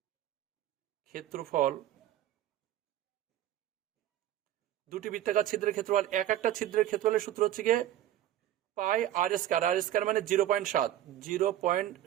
ক্ষেত্রফল, দুটি বৃত্তাকার ছিদ্রের ক্ষেত্রফল, এক একটা ছিদ্রের ক্ষেত্রফলের সূত্র হচ্ছে গিয়ে পাই আর স্কয়ার। আর স্কয়ার মানে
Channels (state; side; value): quieter; left; 12.5 dB